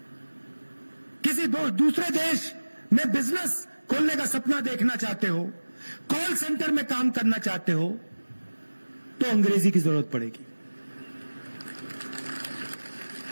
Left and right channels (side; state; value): both; inverted; correlation -1.00